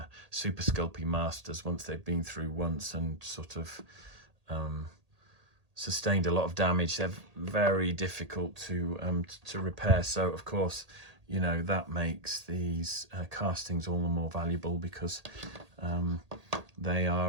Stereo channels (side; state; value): left; late; 1.8 ms